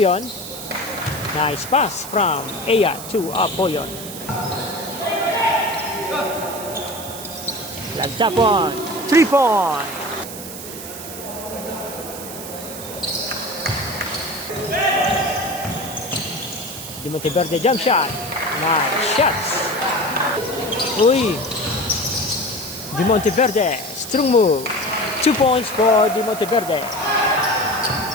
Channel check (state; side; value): noise; right; hiss, 11 dB below the sound